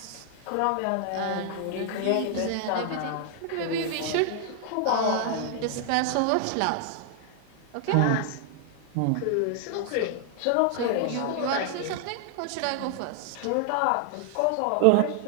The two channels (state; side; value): different; both; correlation 0.00